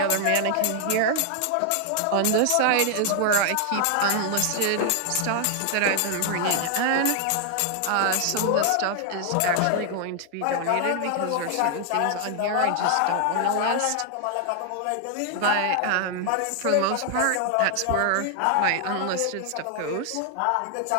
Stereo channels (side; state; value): both; different; correlation 0.00